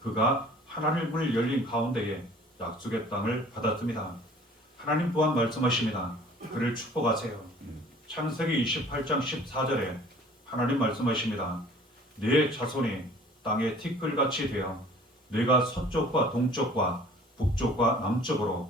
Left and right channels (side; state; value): both; normal; correlation 0.51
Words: 그가 하늘문을 열린 가운데에 약속의 땅을 받았습니다. 하나님 또한 말씀하십니다. 그를 축복하세요. 창세기 28장 14절에 하나님 말씀하십니다. 네 자손이 땅의 티끌같이 되어 내가 서쪽과 동쪽과 북쪽과